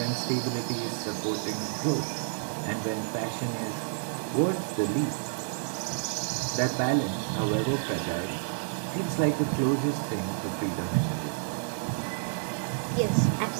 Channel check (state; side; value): silent; left; digital silence